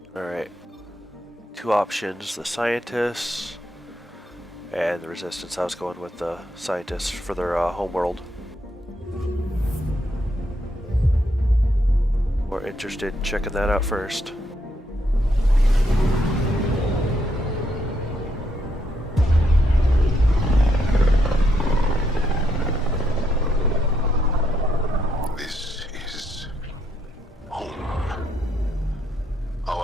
Alright. Two options, the scientists and the resistance. I was going with the scientists for their homeworld. We're interested in checking that out first. This is home.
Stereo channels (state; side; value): normal; both; correlation 0.76